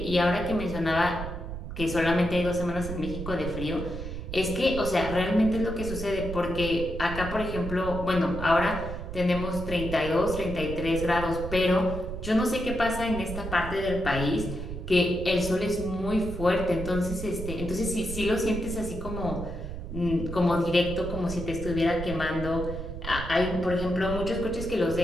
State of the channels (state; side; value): noise; right; rumble, 7 dB below the sound